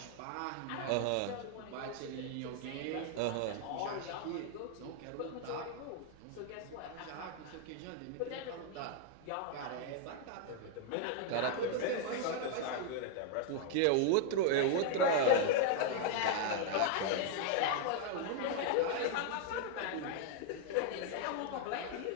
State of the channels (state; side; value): different; both; correlation 0.00